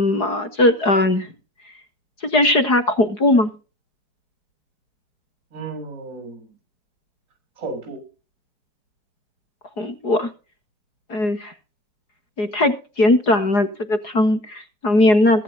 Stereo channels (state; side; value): late; right; 4.8 ms